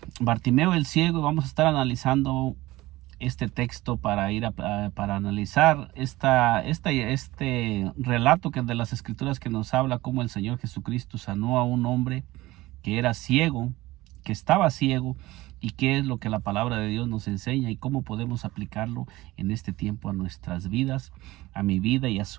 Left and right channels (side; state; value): left; quieter; 18.5 dB